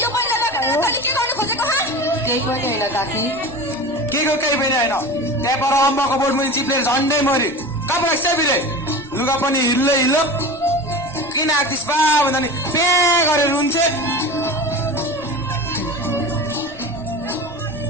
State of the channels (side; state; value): right; noise; rumble, 24 dB below the sound